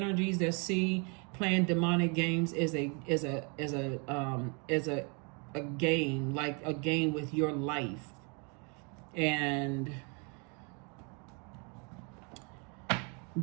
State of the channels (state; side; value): quieter; left; 34.2 dB